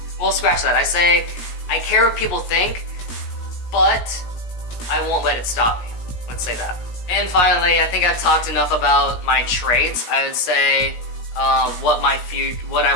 Well, scratch that. I say, I care what people think, but I won't let it stop me. Let's say that. And finally, I think I've talked enough about my traits. I would say what I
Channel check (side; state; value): right; late; 17 ms